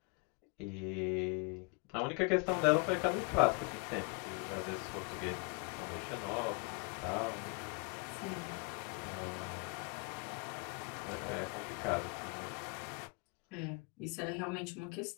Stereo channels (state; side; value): quieter; right; 33.2 dB